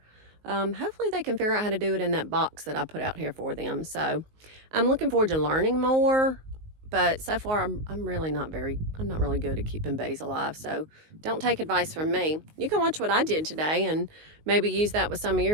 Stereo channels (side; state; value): left; late; 19 ms